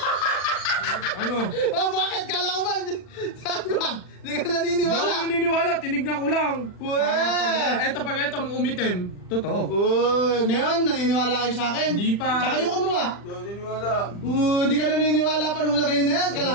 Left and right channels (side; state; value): right; late; 40 ms